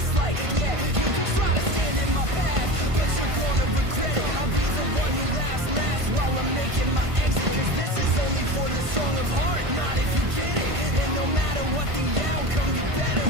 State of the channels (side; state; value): left; late; 1.5 ms